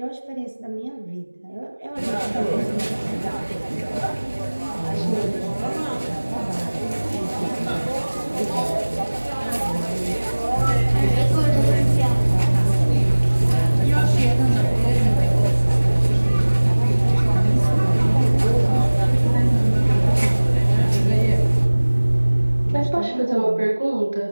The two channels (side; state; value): both; inverted; correlation -1.00